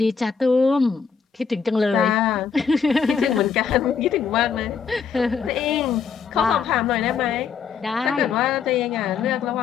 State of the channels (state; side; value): quieter; right; 6.2 dB